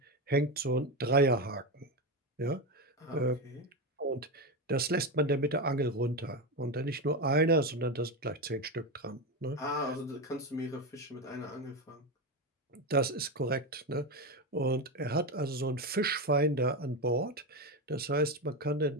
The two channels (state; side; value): normal; both; correlation 0.15